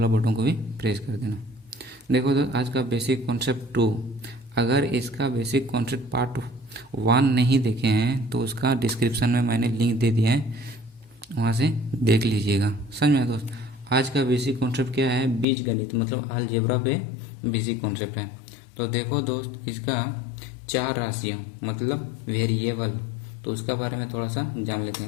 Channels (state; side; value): drops out; right; at 15.5 s